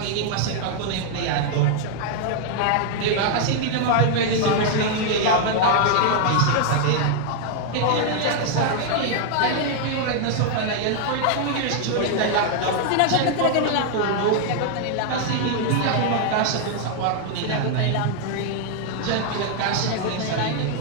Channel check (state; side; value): different; both; correlation 0.00